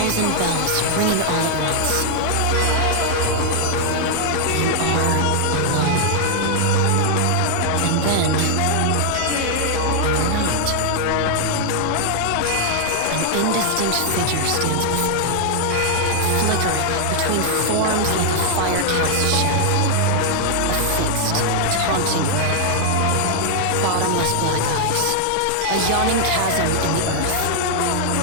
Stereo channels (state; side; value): different; both; correlation 0.00